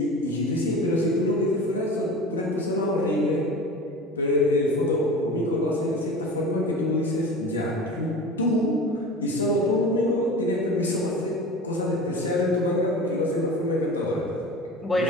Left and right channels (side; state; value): both; normal; correlation 0.35